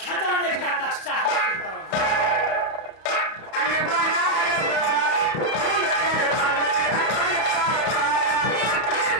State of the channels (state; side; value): late; right; 31 ms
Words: खजाने का नक्शा हासिल करूंगा।